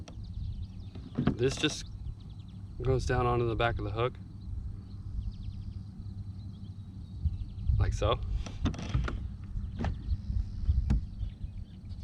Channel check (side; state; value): both; identical; correlation 1.00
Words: This just goes down onto the back of the hook, like so.